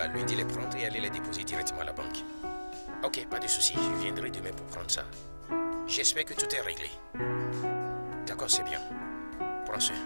lundi les prendre et aller les déposer directement à la banque. Ok, pas de souci, je viendrai demain pour prendre ça. J'espère que tout est réglé. D'accord, c'est bien. Prends soin.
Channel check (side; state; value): both; inverted; correlation -1.00